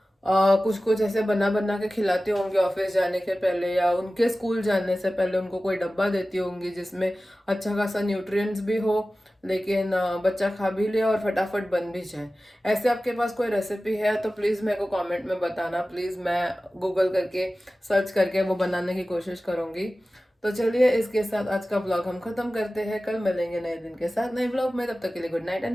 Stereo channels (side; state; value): both; normal; correlation 0.96